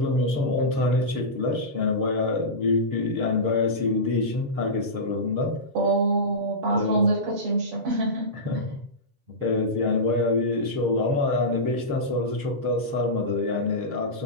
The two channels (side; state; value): left; late; 7.4 ms